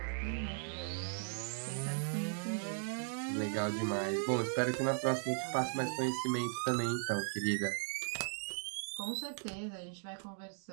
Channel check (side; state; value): left; silent; 53 dB below the other